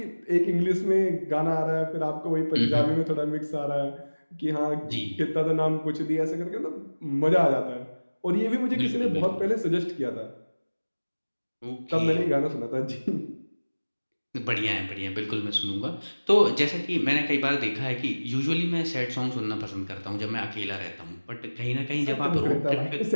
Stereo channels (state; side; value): inverted; both; correlation -1.00